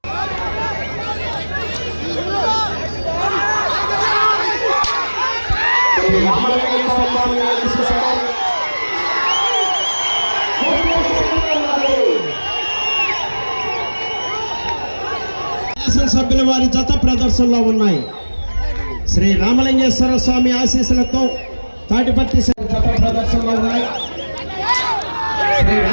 సభ్యుల వారి జత ప్రదర్శనలో ఉన్నాయి. శ్రీ రామలింగేశ్వర స్వామి ఆశీస్సులతో తాటిపర్తి జత ప్రదర్శనలో ఉన్నాయి. శ్రీ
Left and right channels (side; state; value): both; inverted; correlation -1.00